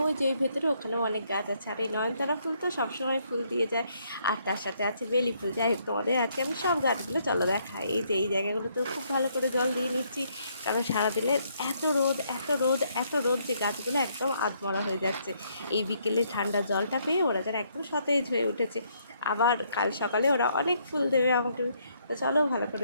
ওই যে ওই ভেতরে ওখানেও অনেক গাছ আছে। আর এই নয়নতারা ফুল তো সবসময় ফুল দিয়ে যায়, আর তার সাথে আছে বেলি ফুল। যাই হোক, তোমাদের আজকে আমি সব গাছগুলো চলো দেখাই। এই যে এই জায়গাগুলোতেও খুব ভালো করে জল দিয়ে নিচ্ছি, কারণ সারাদিনের এত রোদ এত রোদ এত রোদ যে গাছগুলো একদম আধমরা হয়ে যাচ্ছে। এই বিকেলে ঠান্ডা জলটা পেয়ে ওরা যেন একদম সতেজ হয়ে উঠেছে। আবার কাল সকালে ওরা অনেক ফুল দেবে আমাকে। তো চলো ভালো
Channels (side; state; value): both; inverted; correlation -0.71